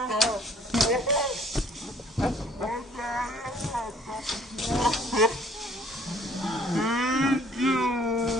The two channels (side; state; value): both; normal; correlation 0.58